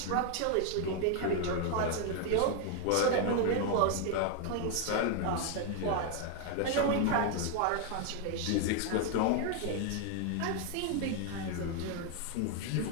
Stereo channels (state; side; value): different; both; correlation 0.00